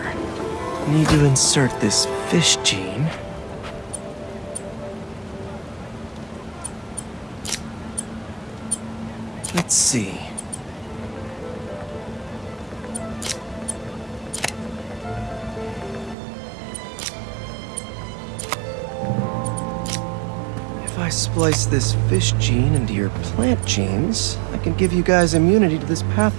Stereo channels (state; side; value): drops out; left; at 16.2 s